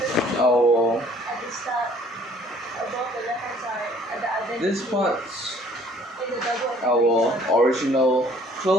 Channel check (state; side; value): normal; both; correlation 0.57